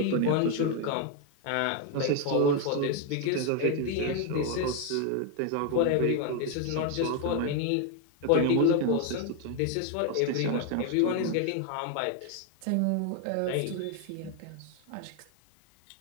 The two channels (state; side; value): different; both; correlation 0.01